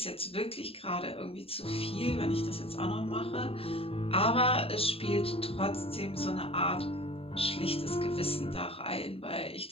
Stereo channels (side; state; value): right; late; 0.27 ms